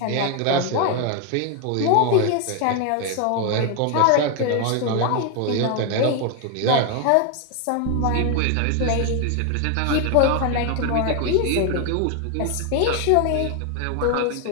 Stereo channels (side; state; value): both; different; correlation 0.01